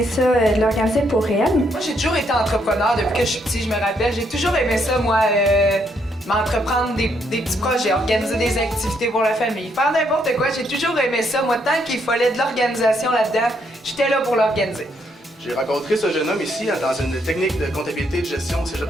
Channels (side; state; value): both; normal; correlation 0.74